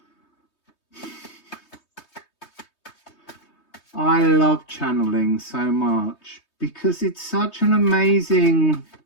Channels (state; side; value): late; right; 3.2 ms